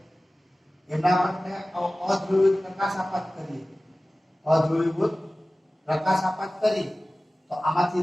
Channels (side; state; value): both; normal; correlation 0.97